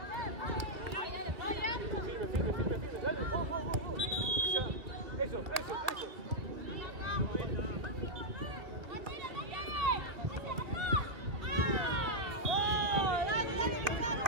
Firme. Dale, go. Ya. Eso.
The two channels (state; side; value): late; left; 2.2 ms